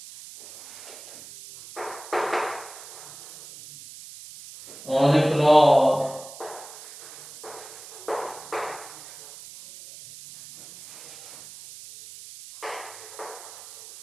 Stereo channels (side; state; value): right; noise; hiss, 16 dB below the sound